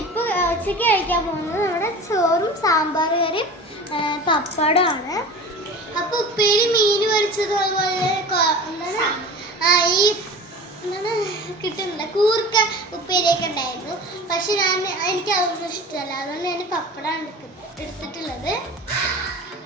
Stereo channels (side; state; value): both; normal; correlation 0.36